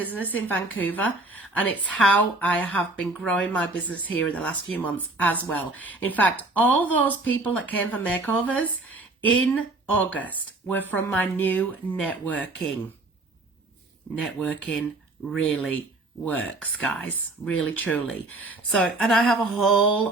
in Vancouver. And it's how I have been growing my business here in the last few months as well. In fact, all those people that came for Makeovers in August were from my new networking. Networking really works, guys. Really, truly. So, and I have a whole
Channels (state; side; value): quieter; left; 3.0 dB